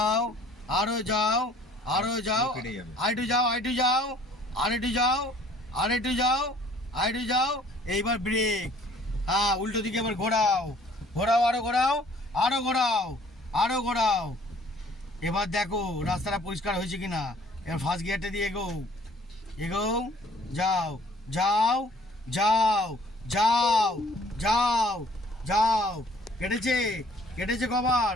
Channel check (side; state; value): both; normal; correlation 0.56